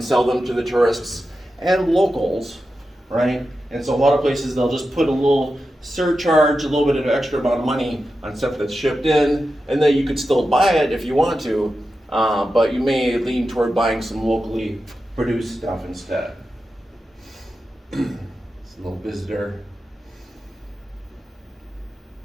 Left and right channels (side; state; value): both; normal; correlation 0.91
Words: sell them to the tourists and locals, right? And so a lot of places, they'll just put a little surcharge, a little bit of extra amount of money on stuff that's shipped in, and then you could still buy it if you want to, but you may lean toward buying some locally produced stuff instead. It's a little visitor.